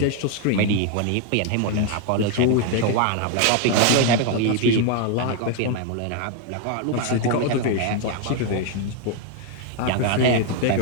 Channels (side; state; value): both; different; correlation 0.00